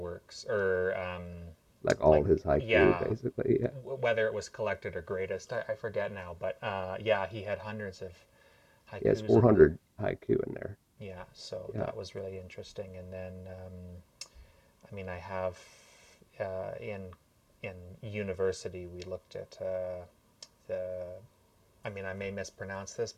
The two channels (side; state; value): both; identical; correlation 1.00